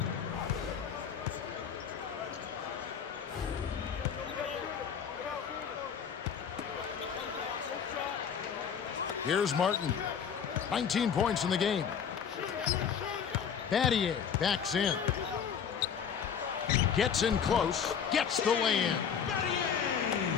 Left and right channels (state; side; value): quieter; right; 7.4 dB